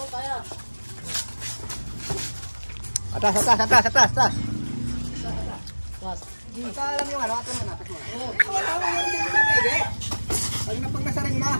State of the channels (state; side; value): inverted; both; correlation -1.00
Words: kaya. Atas. Basta alam yung ano, ato na. Wala mo yung hindi mo pwede. Pag napagnasaring na.